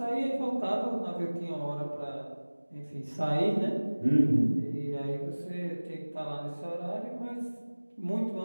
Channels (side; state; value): both; inverted; correlation -1.00